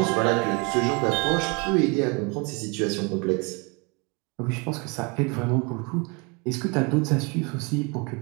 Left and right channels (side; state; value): left; quieter; 30.3 dB